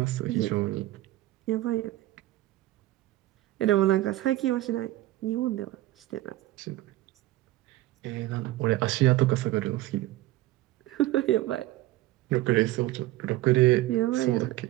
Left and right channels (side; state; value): left; quieter; 16.6 dB